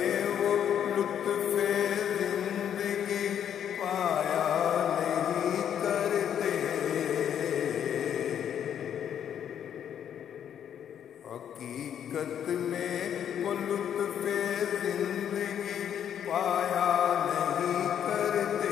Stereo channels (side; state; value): right; quieter; 9.2 dB